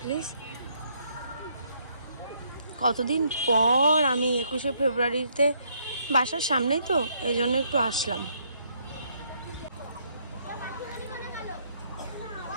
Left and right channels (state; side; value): inverted; both; correlation -0.70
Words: প্লিজ। কতদিন পর আমি 21শে ফেব্রুয়ারিতে বাসার সামনেই তো, এই জন্য একটু আসলাম।